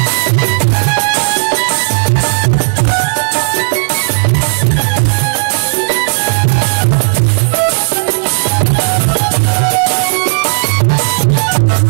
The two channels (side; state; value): left; silent; digital silence